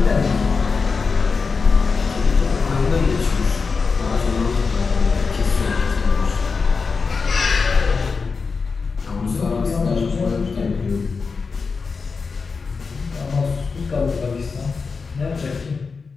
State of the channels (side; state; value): right; quieter; 4.8 dB